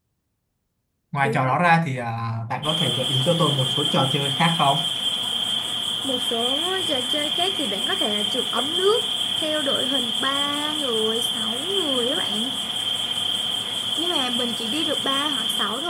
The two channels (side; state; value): both; identical; correlation 1.00